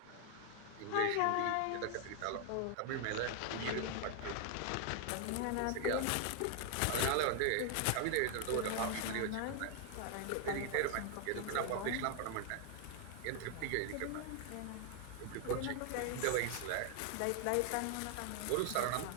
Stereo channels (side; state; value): both; different; correlation 0.00